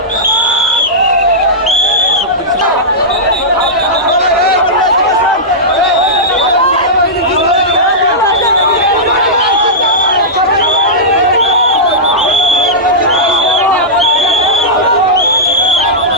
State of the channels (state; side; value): normal; both; correlation -0.12